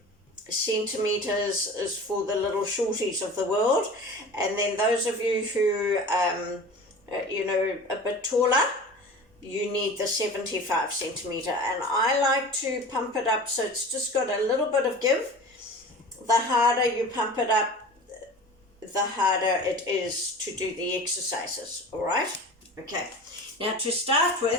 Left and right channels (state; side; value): normal; both; correlation 0.37